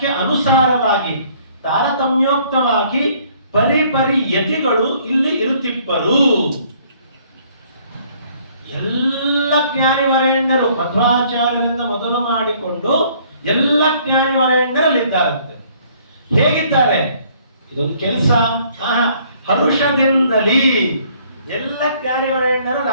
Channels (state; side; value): inverted; both; correlation -0.61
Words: ಅನುಸಾರವಾಗಿ ತಾರತಮ್ಯೋಕ್ತವಾಗಿ ಪರಿಪರಿ ಯತಿಗಳು ಇಲ್ಲಿ ಇರುತ್ತಿಪ್ಪರು. ಎಲ್ಲ ಜ್ಞಾನಿವರೇಣ್ಯರು ಮಧ್ವಾಚಾರ್ಯರಿಂದ ಮೊದಲು ಮಾಡಿಕೊಂಡು ಎಲ್ಲ ಜ್ಞಾನಿವರೇಣ್ಯರಲ್ಲಿದ್ದಾರಂತೆ. ಹೇಗಿದ್ದಾರೆ? ಇದೊಂದು ಕೆಲಸ. ಹರುಷದಿಂದಲೇ ಎಲ್ಲ ಜ್ಞಾನಿವರೇಣ್ಯರು